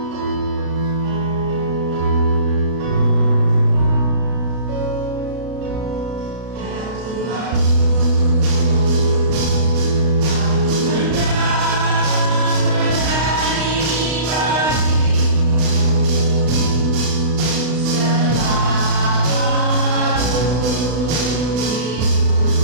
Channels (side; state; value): left; late; 32 ms